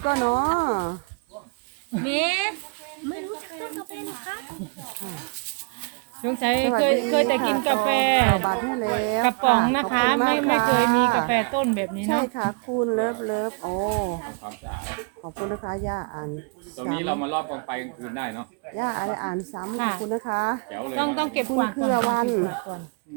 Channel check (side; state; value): left; quieter; 33.8 dB